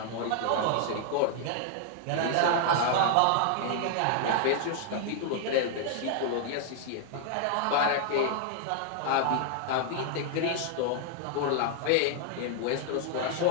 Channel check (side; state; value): both; different; correlation 0.00